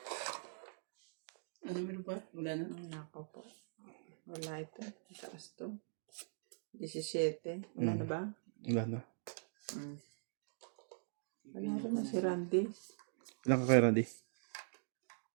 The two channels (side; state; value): left; silent; digital silence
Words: Ano meron pa? Wala na. Nako po. Wala ito. Taas to. 17. Wala na ba? Wala na. Wala rin na si Randy. Ilan ka kay Randy?